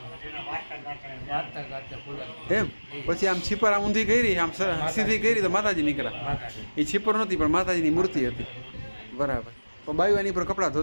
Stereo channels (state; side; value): inverted; both; correlation -1.00